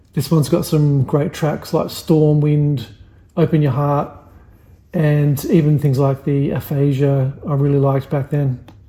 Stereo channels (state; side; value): identical; both; correlation 1.00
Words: This one's got some great tracks like Storm Wind, Open Your Heart, and even things like the Aphasia I really liked back then.